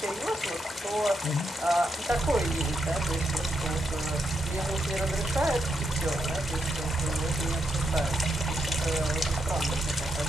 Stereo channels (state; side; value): normal; both; correlation 0.81